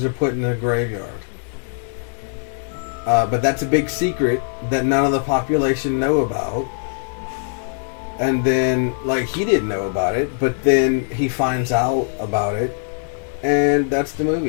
are put in a graveyard. But that's a big secret that none of the population know about. And then, like, he didn't know about it, but then he finds out about it, and that's the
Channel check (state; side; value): silent; right; 65 dB below the other